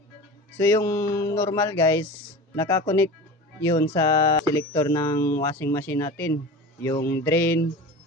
So yung normal guys, nakakonect yun sa selector ng washing machine natin, yung drain,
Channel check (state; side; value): normal; both; correlation 0.33